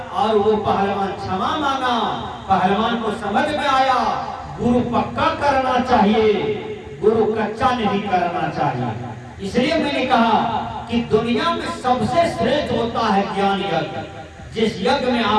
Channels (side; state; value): both; identical; correlation 1.00